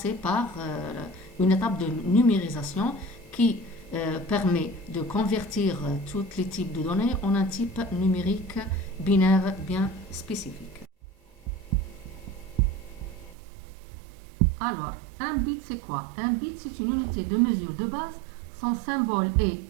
par une étape de numérisation qui permet de convertir tous les types de données en un type numérique binaire bien spécifique. Alors, un bit c'est quoi? Un bit c'est une unité de mesure de base. Son symbole est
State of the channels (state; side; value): drops out; left; at 13.4 s